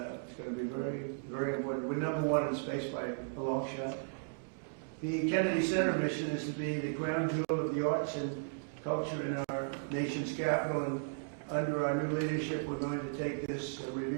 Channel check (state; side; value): silent; left; digital silence